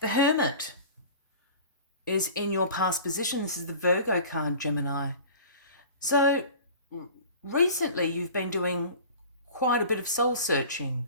Hermit is in your past position. This is the Virgo card, Gemini. So recently you've been doing quite a bit of soul searching.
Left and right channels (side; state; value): both; inverted; correlation -0.41